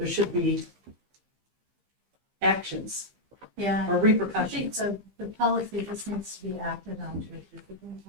should be actions Yeah. or I think repercussions. the policy just needs to be acted on to a discipline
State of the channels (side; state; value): left; late; 15 ms